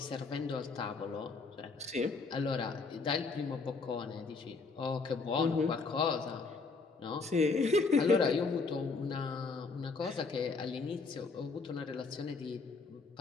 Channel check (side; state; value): right; quieter; 4.3 dB